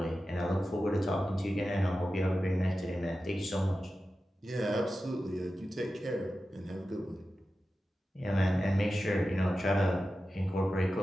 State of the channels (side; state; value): both; normal; correlation 0.93